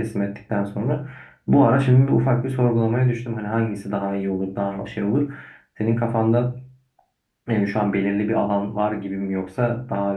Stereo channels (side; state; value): both; identical; correlation 1.00